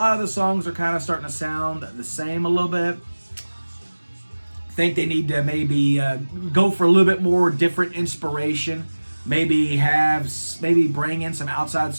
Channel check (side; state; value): both; inverted; correlation -1.00